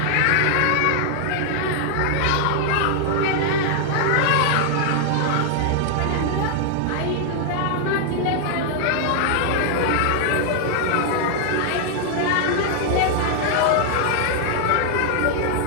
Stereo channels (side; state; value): both; different; correlation 0.00